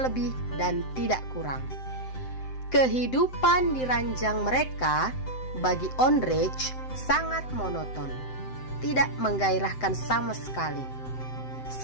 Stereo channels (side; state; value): right; late; 7.8 ms